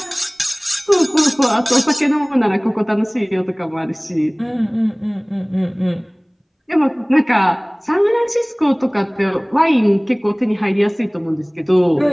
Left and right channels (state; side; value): identical; both; correlation 1.00